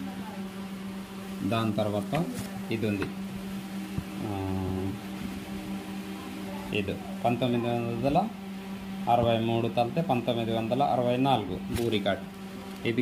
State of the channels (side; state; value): both; identical; correlation 1.00